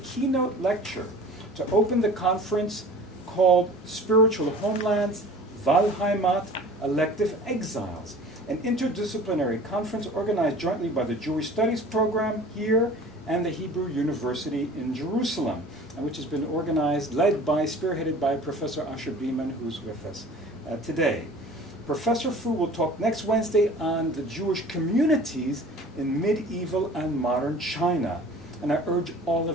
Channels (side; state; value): both; normal; correlation 0.44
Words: lecture to open the conference called Spiritual Homelands, Wahlheimat, Elective Exiles, an interdisciplinary conference organized jointly by the Jewish Studies program here and the Hebrew University in Jerusalem, and which has been organized, spearheaded by Professor Asher Beeman, who's with us today. Professor Fu will talk next Wednesday on the Jewish communities in medieval and modern China, and I urge all